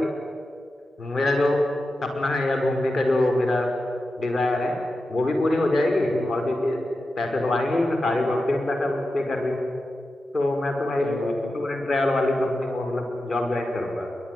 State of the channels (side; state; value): both; normal; correlation 0.91